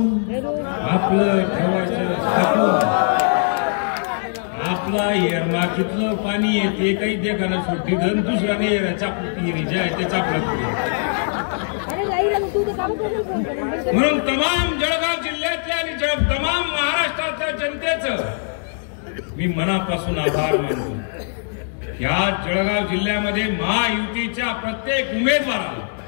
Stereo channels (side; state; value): right; silent; digital silence